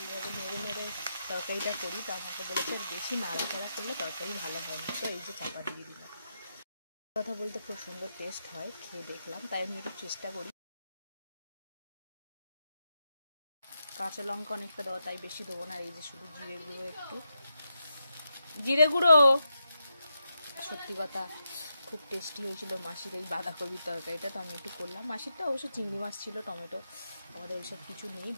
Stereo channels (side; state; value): both; inverted; correlation -0.85